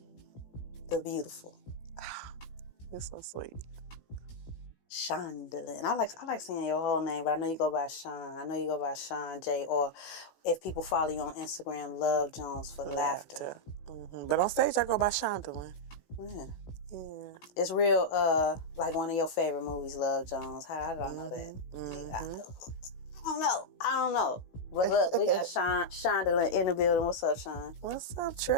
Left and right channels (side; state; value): right; late; 16 ms